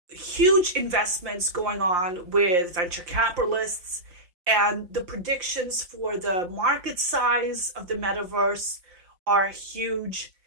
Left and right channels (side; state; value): left; late; 5.6 ms